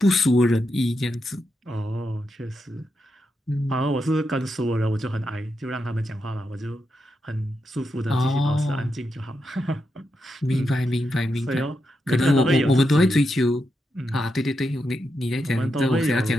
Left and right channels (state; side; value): normal; both; correlation 0.85